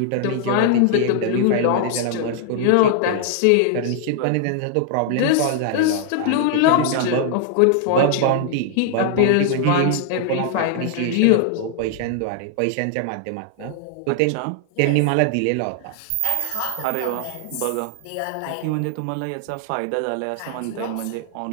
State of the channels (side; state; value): both; different; correlation 0.00